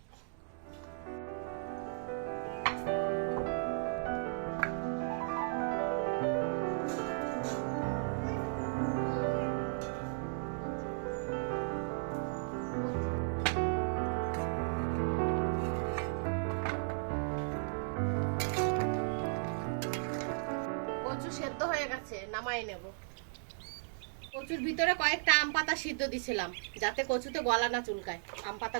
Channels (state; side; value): silent; left; digital silence